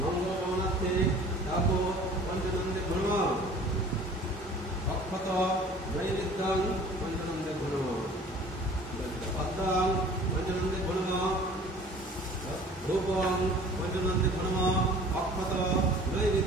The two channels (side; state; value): both; normal; correlation 0.48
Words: মঙ্গল কামনার্থে ডাউক পঞ্চনন্দে ধর্ম অক্ষত নৈবেদ্যং পঞ্চনন্দে ধর্ম পদ্মাং পঞ্চনন্দে ধর্ম রূপং পঞ্চনন্দে ধর্ম অক্ষত